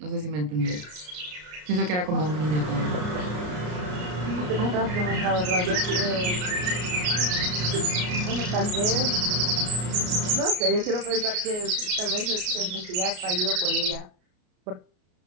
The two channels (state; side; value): late; left; 33 ms